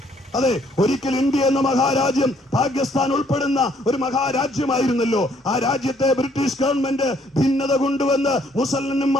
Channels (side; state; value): both; normal; correlation 0.65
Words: അതെ, ഒരിക്കൽ ഇന്ത്യ എന്ന മഹാരാജ്യം പാകിസ്ഥാൻ ഉൾപ്പെടുന്ന ഒരു മഹാരാജ്യമായിരുന്നല്ലോ. ആ രാജ്യത്തെ ബ്രിട്ടീഷ് ഗവൺമെന്റ് ഭിന്നത കൊണ്ടുവന്ന്